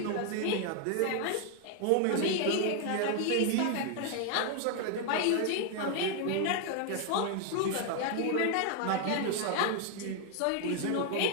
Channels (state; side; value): different; both; correlation 0.00